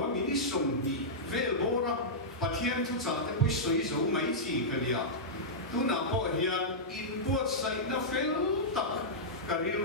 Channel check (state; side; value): normal; both; correlation -0.12